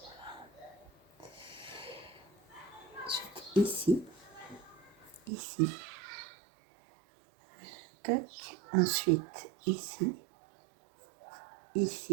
Ici, ici, tac, ensuite ici,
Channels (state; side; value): drops out; left; at 5.3 s